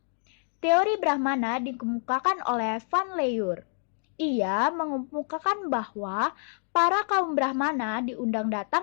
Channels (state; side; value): silent; right; 60 dB below the other